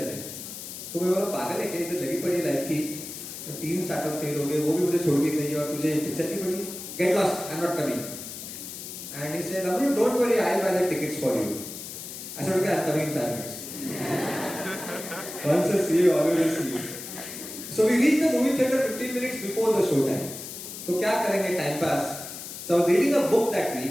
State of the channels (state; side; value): noise; left; hiss, 10 dB below the sound